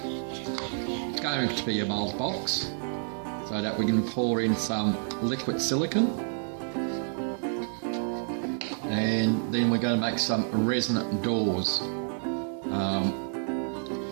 it's going to be a mould box, so that we can pour in some liquid silicone, and then we're going to make some resonant doors.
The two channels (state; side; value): silent; left; digital silence